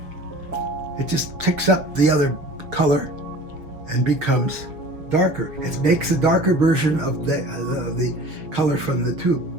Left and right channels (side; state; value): left; late; 6.5 ms